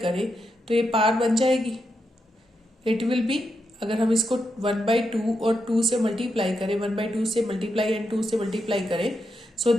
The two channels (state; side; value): normal; both; correlation 0.84